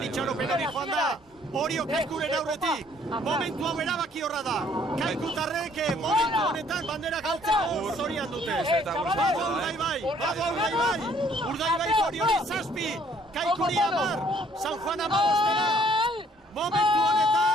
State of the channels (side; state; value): both; normal; correlation 0.62